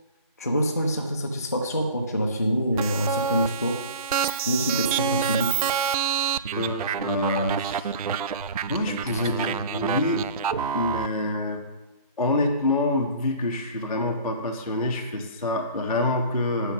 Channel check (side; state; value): both; inverted; correlation -0.41